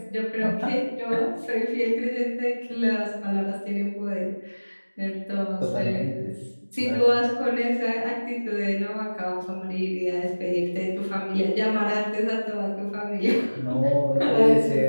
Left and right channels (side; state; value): both; inverted; correlation -1.00